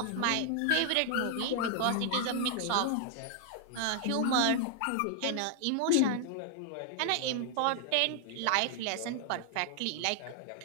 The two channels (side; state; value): both; different; correlation 0.00